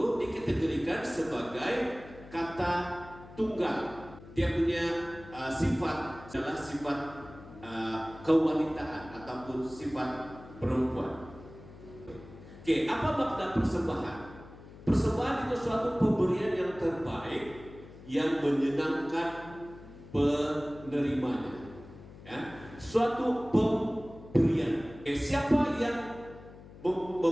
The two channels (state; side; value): noise; left; hum, 18 dB below the sound